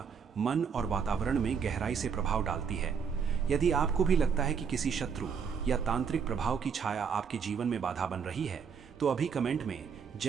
मन और वातावरण में गहराई से प्रभाव डालती है। यदि आपको भी लगता है कि किसी शत्रु या तांत्रिक प्रभाव की छाया आपके जीवन में बाधा बन रही है, तो अभी कमेंट में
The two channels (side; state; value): left; quieter; 6.5 dB